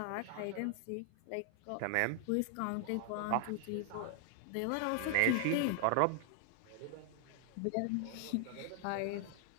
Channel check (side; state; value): both; different; correlation 0.00